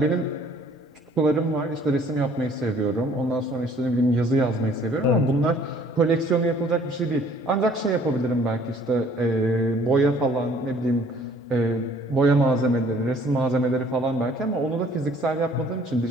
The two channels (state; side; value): normal; both; correlation 0.57